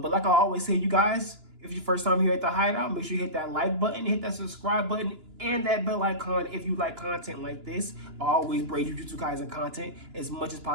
like I always say, you guys, if it's your first time here at the Hideout, make sure you hit that like button, hit that subscribe button, and that bell icon if you like content like this. I always bring Jujutsu Kaisen content as much as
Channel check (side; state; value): left; late; 2.9 ms